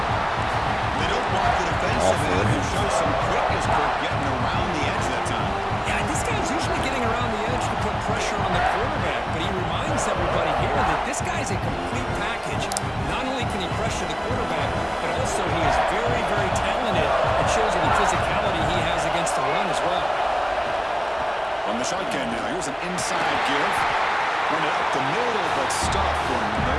They don't block the defensive end. Who shows some quickness, Kirk, getting around the edge that time. Yeah, this guy's usually getting around the edge to put pressure on the quarterback, but he reminds everybody here that this guy's a complete package. Not only can he pressure the quarterback, but also he is very, very talented. It shows in the physicality he has against the run as well. On the shotgun now, here's an inside give. Run it up the middle, but stuffed for no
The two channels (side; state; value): both; identical; correlation 1.00